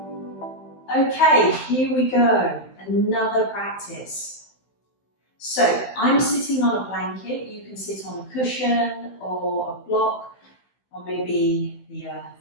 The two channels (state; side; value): late; right; 15 ms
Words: Okay, here we go. Another practice. So I'm sitting on a blanket. You can sit on a cushion or a block or maybe the